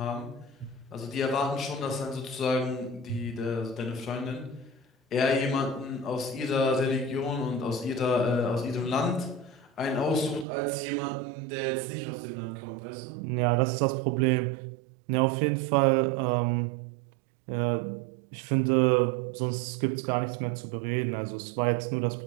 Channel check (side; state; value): left; drops out; at 10.5 s